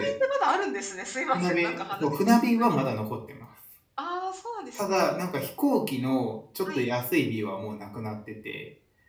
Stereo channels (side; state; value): both; identical; correlation 1.00